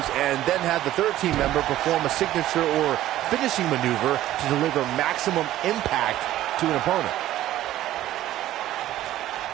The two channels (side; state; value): left; quieter; 13.9 dB